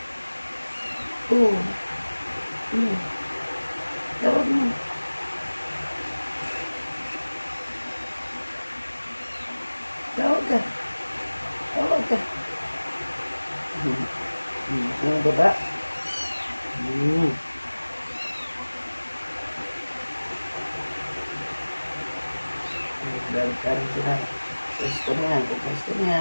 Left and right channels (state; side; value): inverted; both; correlation -1.00